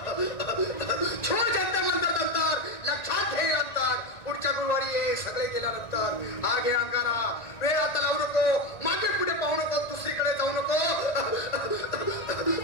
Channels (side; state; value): right; late; 1.9 ms